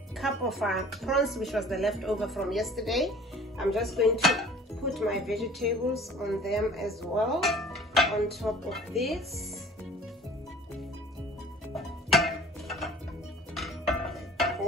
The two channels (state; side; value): normal; both; correlation 0.48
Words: cup of prawns, which was the leftover from yesterday. I'm just going to put my vegetables on them as well, on top of this.